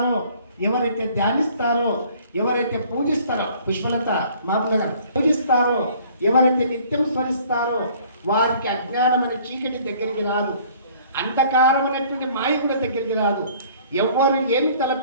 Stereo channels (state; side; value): inverted; both; correlation -0.55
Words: ఎవరైతే ధ్యానిస్తారో, ఎవరైతే పూజిస్తారో, పుష్పలత మాపుల గారు పూజిస్తారో, ఎవరైతే నిత్యం స్మరిస్తారో వారికి అజ్ఞానం అనే చీకటి దగ్గరికి రాదు, అంధకారం అనేటువంటి మాయ కూడా దగ్గరికి రాదు. ఎవరు ఏమి